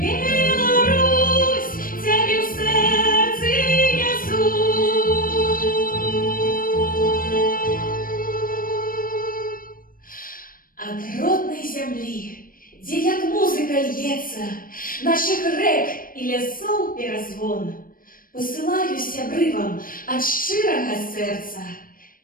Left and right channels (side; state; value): right; late; 0.41 ms